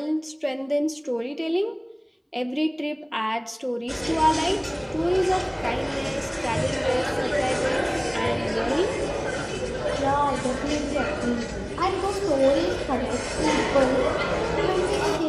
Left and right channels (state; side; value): identical; both; correlation 1.00